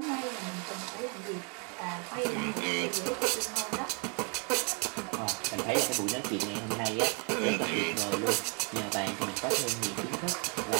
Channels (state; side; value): quieter; left; 36.4 dB